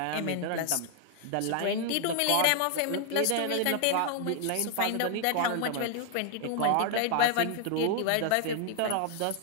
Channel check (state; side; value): different; both; correlation 0.00